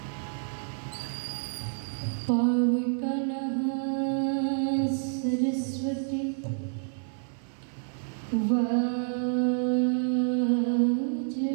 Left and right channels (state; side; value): silent; left; 59 dB below the other